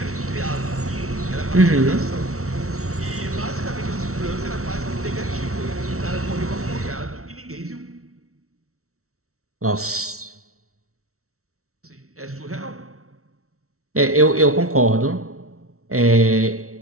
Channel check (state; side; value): late; left; 0.63 ms